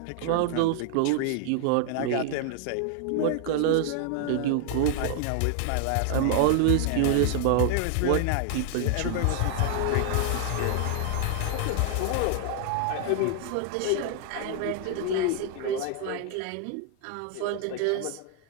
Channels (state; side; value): different; both; correlation 0.00